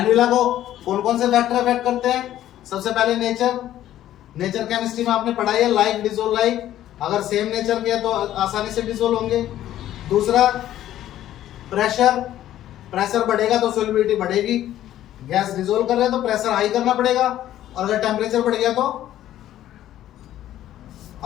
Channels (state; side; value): quieter; right; 12.6 dB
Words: लॉ को कौन कौन से फैक्टर अफेक्ट करते हैं, सबसे पहले नेचर, नेचर केमिस्ट्री में आपने पढ़ाई है, लाइक डिसॉल्व लाइक, अगर सेम नेचर के तो आसानी से डिसॉल्व होंगे। दूसरा, प्रेशर, प्रेशर बढ़ेगा तो सॉल्युबिलिटी बढ़ेगी, गैस डिसॉल्व कर रहे हैं तो प्रेशर हाई करना पड़ेगा, और अगर टेम्परेचर बढ़ गया तो